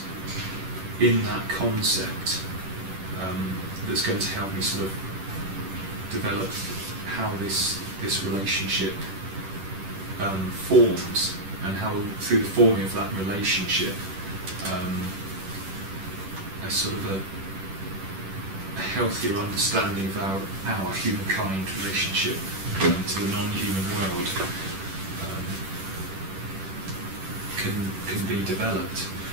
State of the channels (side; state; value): left; late; 10 ms